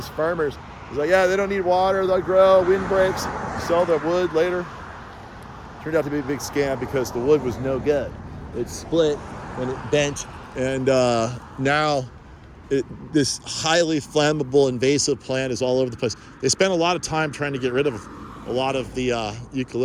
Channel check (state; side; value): identical; both; correlation 1.00